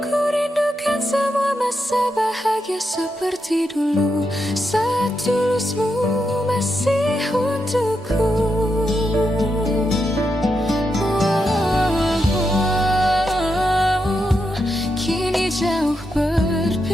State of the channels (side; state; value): both; normal; correlation 0.84